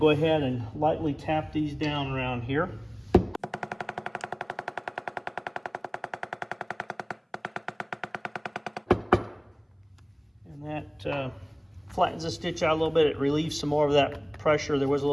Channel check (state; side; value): identical; both; correlation 1.00